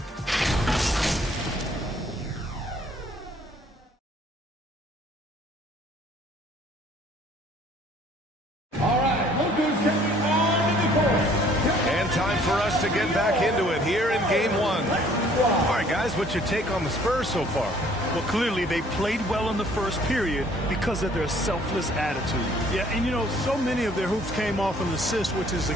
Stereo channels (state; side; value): normal; both; correlation 0.58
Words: stepping on the court. And time for us to get back into it here in game one. All right, guys, what's your take on the Spurs so far? Well, clearly they played well in the first period because of their selfless attitude. Yeah, and you know, so many of their hoops came off an assist, which is